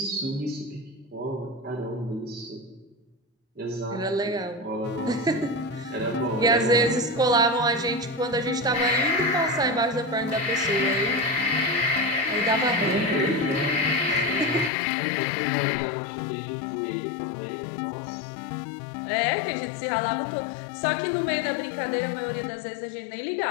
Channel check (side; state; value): right; drops out; at 14.7 s